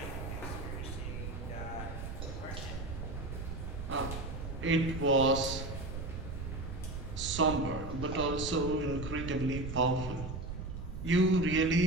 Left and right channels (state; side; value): noise; right; rumble, 6 dB below the sound